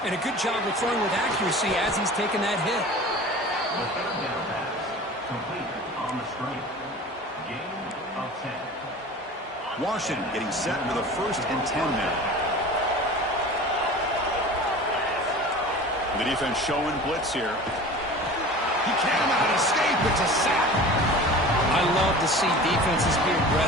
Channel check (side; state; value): both; normal; correlation 0.38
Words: and a good job of throwing with accuracy as he's taking that hit. Washington getting set with a 1st and 10 now. The defense showing blitz here. He cannot escape. It's a sack. I I love to see defenses be